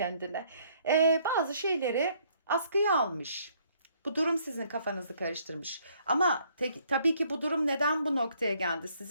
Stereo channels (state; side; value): inverted; both; correlation -0.65